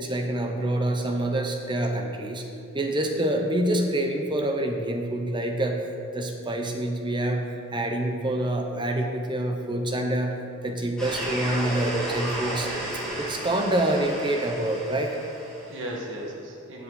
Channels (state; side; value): normal; both; correlation 0.55